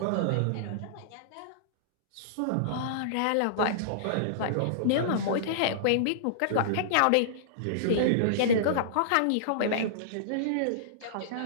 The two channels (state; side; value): different; both; correlation -0.02